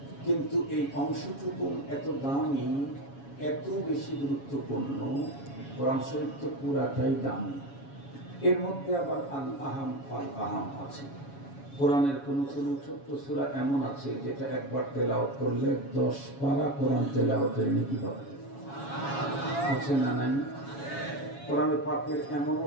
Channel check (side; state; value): right; late; 7.2 ms